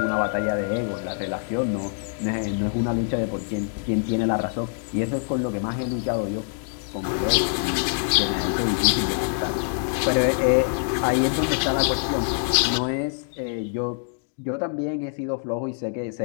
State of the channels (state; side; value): silent; right; 62 dB below the other